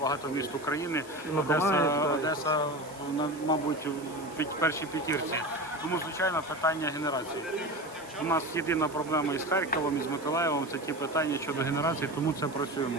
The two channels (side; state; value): right; noise; hiss, 20 dB below the sound